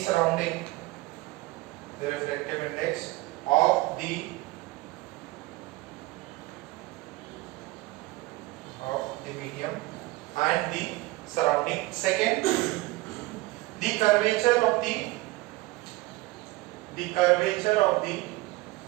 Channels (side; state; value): left; quieter; 20.2 dB